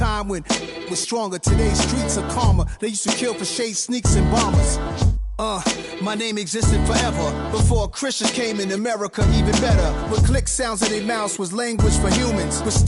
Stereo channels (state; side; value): identical; both; correlation 1.00